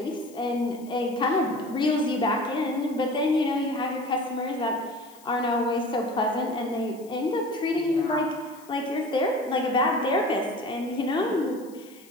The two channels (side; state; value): left; noise; hiss, 24 dB below the sound